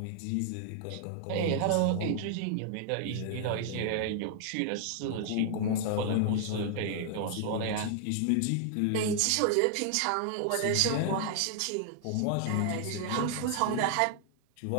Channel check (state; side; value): different; both; correlation 0.00